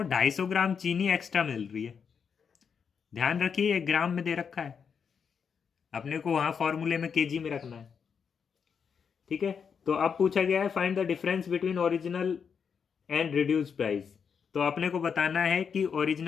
250 ग्राम चीनी एक्स्ट्रा मिल रही है। ध्यान रखिए 1 ग्राम में दे रखा है, अपने को वहां फॉर्मूले में केजी में रखना है, ठीक है। तो अब पूछा गया है find the difference between original and reduce price. तो अपने को बताना है कि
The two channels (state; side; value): quieter; right; 6.6 dB